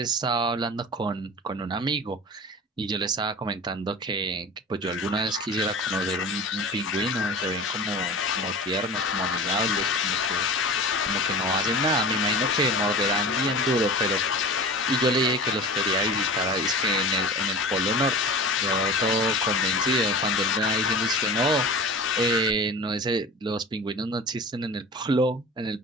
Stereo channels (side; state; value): both; normal; correlation 0.35